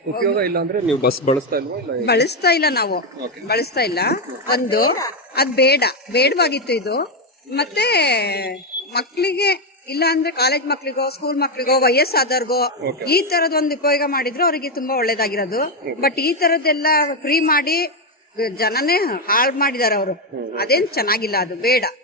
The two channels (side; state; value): both; normal; correlation 0.06